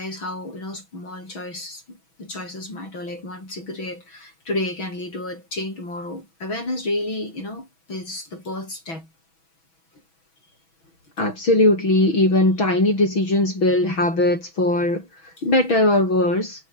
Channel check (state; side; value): late; right; 6.1 ms